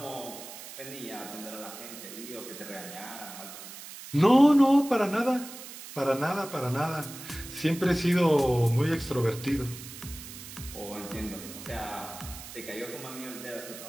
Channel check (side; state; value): right; noise; hiss, 13 dB below the sound